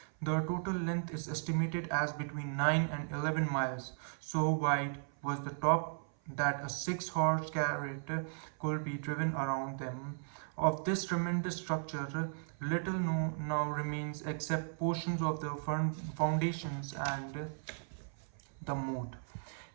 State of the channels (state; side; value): silent; left; 54 dB below the other